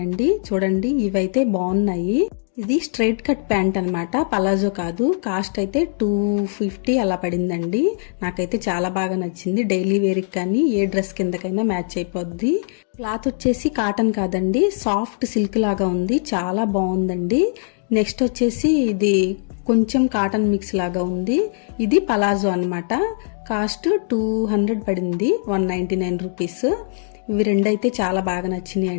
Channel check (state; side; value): silent; right; digital silence